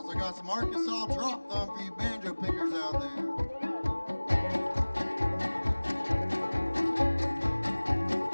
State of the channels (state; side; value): inverted; both; correlation -1.00